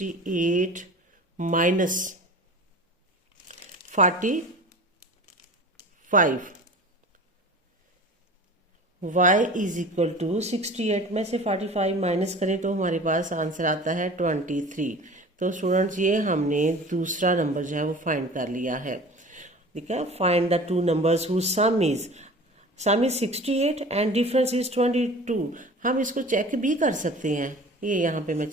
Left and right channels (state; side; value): normal; both; correlation 0.40